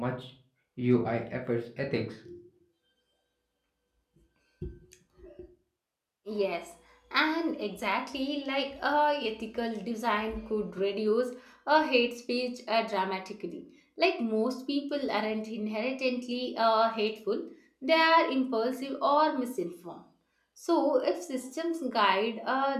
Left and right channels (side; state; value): both; identical; correlation 1.00